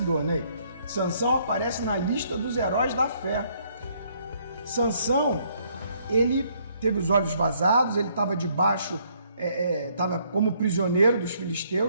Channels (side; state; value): both; inverted; correlation -0.67